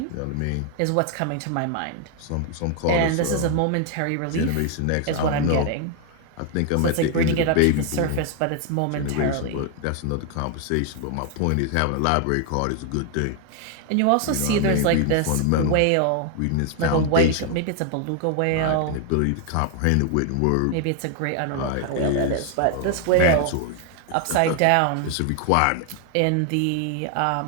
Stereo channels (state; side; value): different; both; correlation 0.00